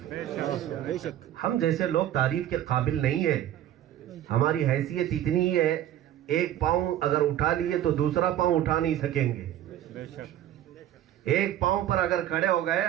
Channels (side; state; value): left; quieter; 12.0 dB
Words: ہم جیسے لوگ تعریف کے قابل نہیں ہیں. ہماری حیثیت اتنی ہی ہے, ایک پاؤں اگر اٹھا لیے تو دوسرا پاؤں اٹھا نہیں سکیں گے. ایک پاؤں پر اگر کھڑے ہو گئے,